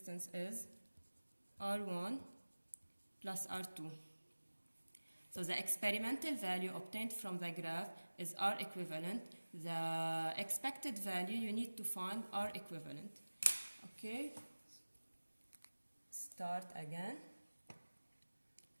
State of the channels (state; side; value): inverted; both; correlation -1.00